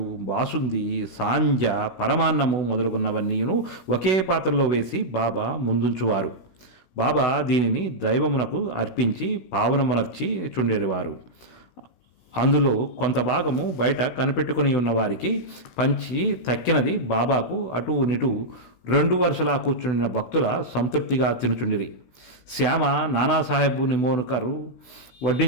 బాసుంది, సాంజ, పరమాన్నము మొదలుగున్నవన్నీను ఒకే పాత్రలో వేసి బాబా ముందుంచువారు. బాబా దీనిని దైవమునకు అర్పించి పావనమునర్చి చుండేవారు. అందులో కొంత భాగము బయట కనిపెట్టుకుని ఉన్న వారికి పంచి తక్కినది బాబాకు అటు నిటు 2 వరుసలా కూర్చుండిన భక్తుల సంతృప్తిగా తినుచుండిరి. శ్యామ నానాసాహెబ్ నిమోనుకరు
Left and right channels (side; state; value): right; late; 16 ms